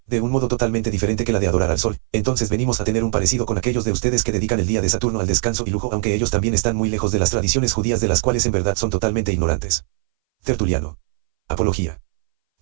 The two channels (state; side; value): silent; left; 62 dB below the other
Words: de un modo totalmente diferente que la de adorar al sol, entonces venimos a tener un parecido con aquellos de ustedes que dedican el día de Saturno al descanso y lujo, aunque ellos también están muy lejos de las tradiciones judías de las cuales en verdad son totalmente ignorantes. Tertuliano. Apología.